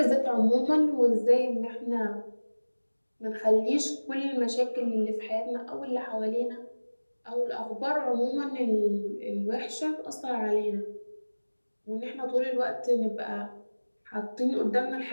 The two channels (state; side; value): inverted; both; correlation -1.00